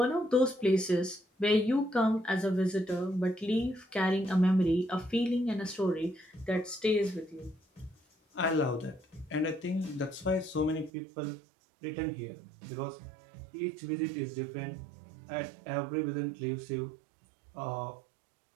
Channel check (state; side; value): drops out; left; at 10.9 s